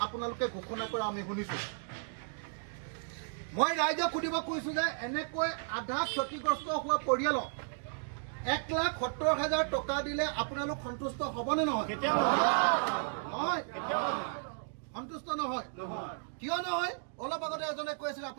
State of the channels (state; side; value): silent; left; digital silence